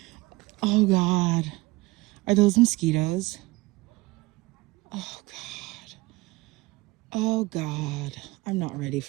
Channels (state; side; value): quieter; left; 21.7 dB